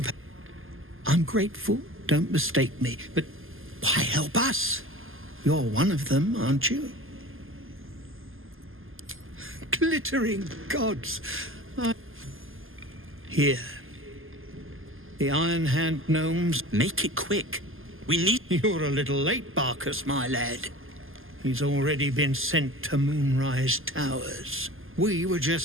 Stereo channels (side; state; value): left; late; 0.59 ms